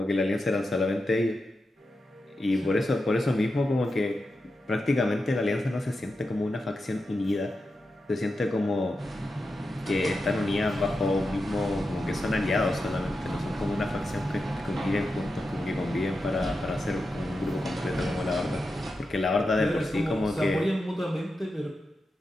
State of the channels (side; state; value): both; normal; correlation 0.89